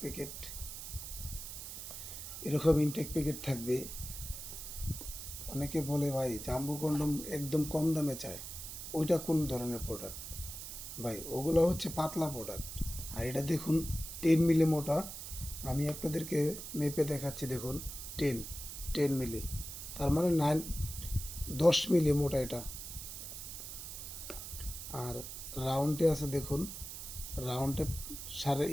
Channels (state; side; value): noise; right; hiss, 9 dB below the sound